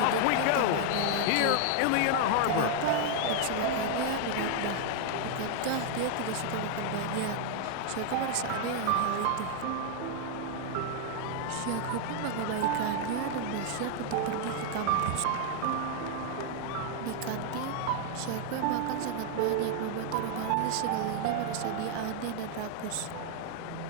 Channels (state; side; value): different; both; correlation 0.00